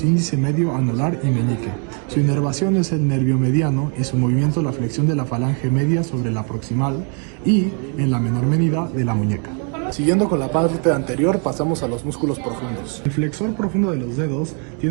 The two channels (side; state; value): left; quieter; 39.9 dB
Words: índice, medio, anular y meñique. Su inervación es el nervio mediano y su movimiento la flexión de la falange media sobre la proximal y, en la menor medida, de la muñeca. Siguiendo con la parte anterior, pasamos a los músculos profundos. El flexor profundo de los dedos